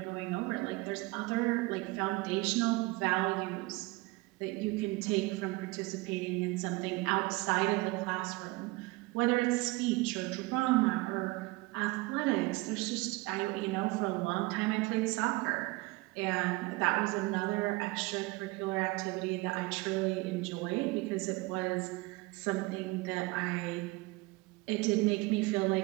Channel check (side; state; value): left; quieter; 22.9 dB